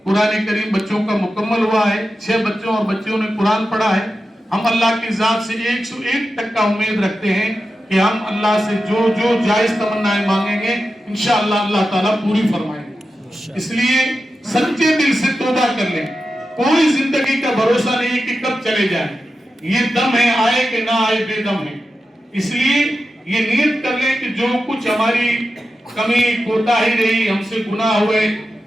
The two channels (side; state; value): both; normal; correlation 0.91